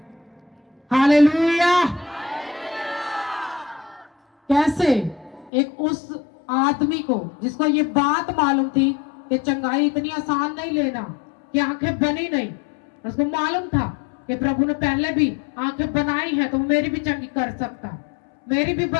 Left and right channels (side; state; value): right; drops out; at 5.5 s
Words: हालेलुया। कैसे? एक उस आदमी को जिसको ये बात मालूम थी कि चंगाई इतनी आसान नहीं लेना, कि आंखें बनी नहीं, उसको मालूम था कि प्रभु ने पहले भी आंखें बनाई है तो मेरी भी चंगी कर सकता, मेरी भी